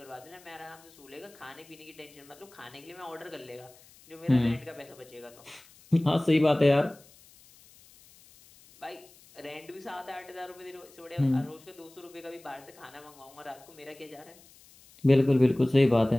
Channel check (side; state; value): left; noise; hiss, 25 dB below the sound